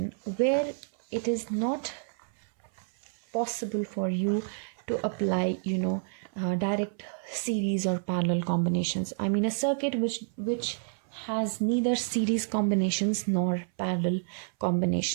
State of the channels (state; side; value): silent; left; 58 dB below the other